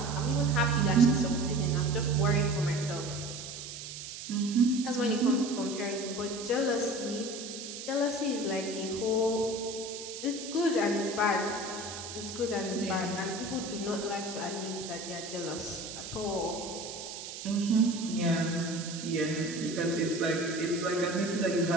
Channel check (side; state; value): right; noise; hiss, 10 dB below the sound